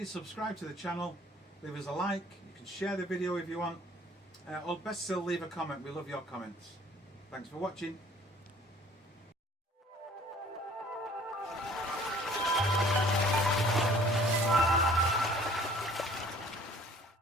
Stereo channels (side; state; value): both; normal; correlation 0.53